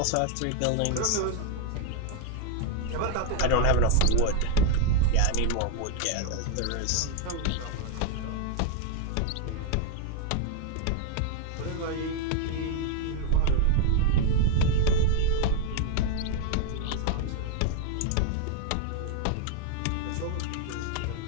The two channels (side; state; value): both; different; correlation 0.01